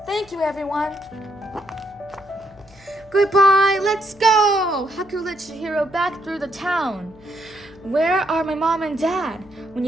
"Thank you, everyone." "Goodbye, let's go!" Haku led Chihiro back through the town. "Where are my mom and dad?" When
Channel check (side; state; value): left; noise; hum, 26 dB below the sound